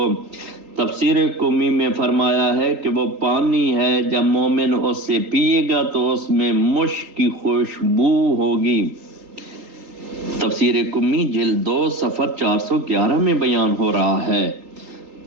تفسیر قمی میں فرمایا ہے کہ وہ پانی ہے، جب مومن اس سے پیے گا تو اس میں مشک کی خوشبو ہوگی۔ تفسیر قمی جلد 2 صفحہ 411 میں بیان ہو رہا ہے۔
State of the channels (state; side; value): late; left; 3.8 ms